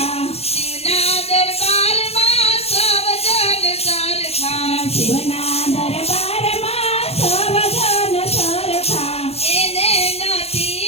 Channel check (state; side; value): late; right; 0.29 ms